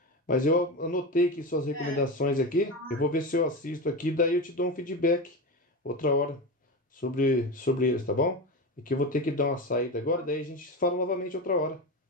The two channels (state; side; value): normal; both; correlation 0.21